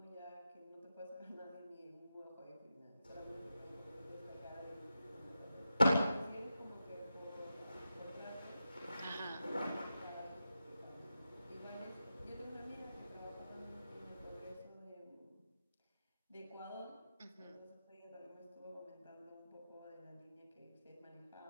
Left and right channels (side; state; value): both; inverted; correlation -0.90